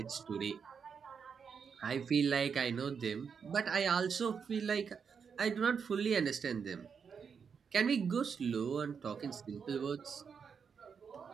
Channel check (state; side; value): quieter; left; 6.4 dB